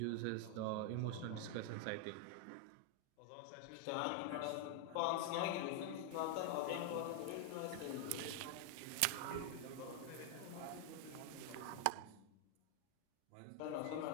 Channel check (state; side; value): different; both; correlation 0.00